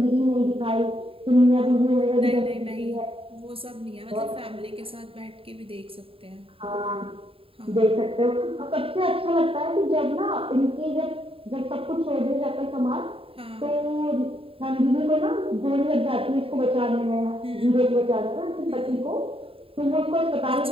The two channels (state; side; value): late; left; 0.27 ms